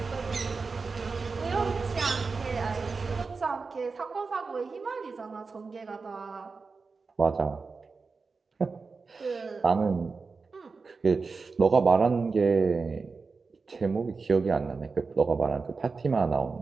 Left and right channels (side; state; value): left; quieter; 4.5 dB